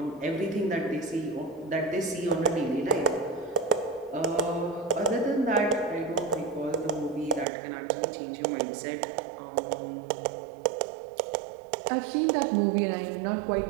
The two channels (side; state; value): left; drops out; at 7.5 s